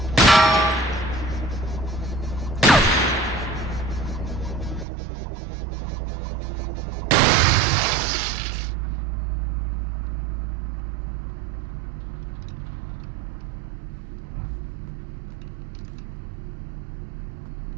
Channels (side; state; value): left; drops out; at 4.9 s